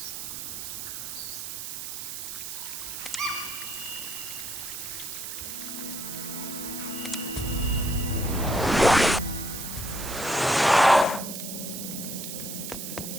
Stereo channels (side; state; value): right; noise; hiss, 6 dB below the sound